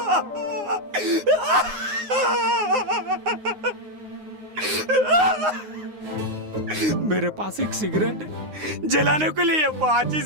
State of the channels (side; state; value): left; late; 9.6 ms